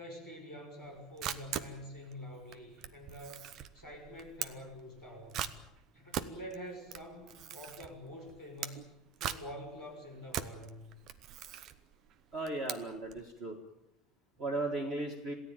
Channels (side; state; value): left; quieter; 3.8 dB